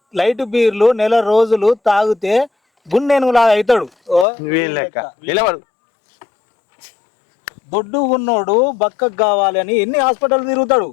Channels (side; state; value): right; drops out; at 4.2 s